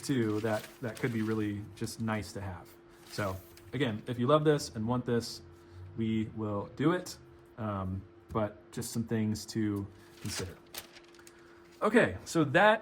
too, that could be really just nice to have. So again, if you love this and want this, we will do it. But just some things to consider. Okay, so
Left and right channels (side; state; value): both; identical; correlation 1.00